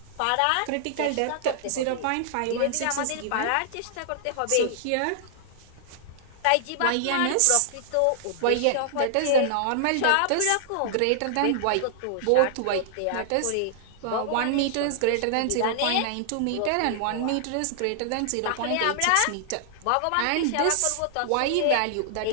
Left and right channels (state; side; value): different; both; correlation -0.01